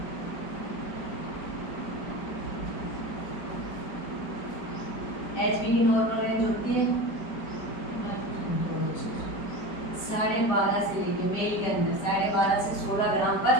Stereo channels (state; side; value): late; right; 4.7 ms